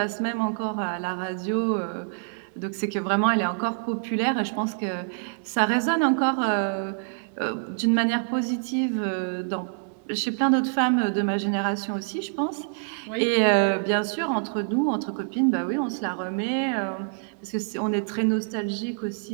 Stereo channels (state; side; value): silent; left; digital silence